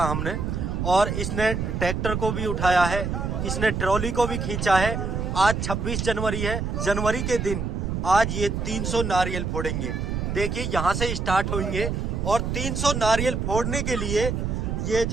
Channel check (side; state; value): right; noise; rumble, 2 dB below the sound